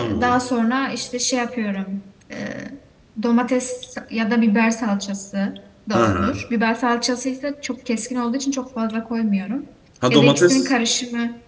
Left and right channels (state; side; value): identical; both; correlation 1.00